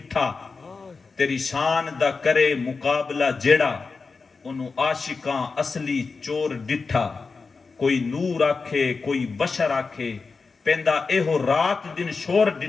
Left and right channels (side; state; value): right; quieter; 4.5 dB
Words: تیری شان دا کرے مقابلہ جیڑا، انہوں عاشقاں اصلی چور ڈٹھا، کوئی نور آکھے کوئی بشر آکھے، پیندا ایہو رات دن شور